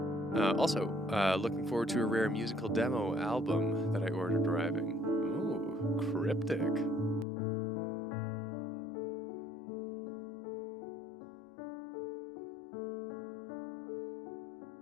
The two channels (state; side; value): drops out; right; at 7.2 s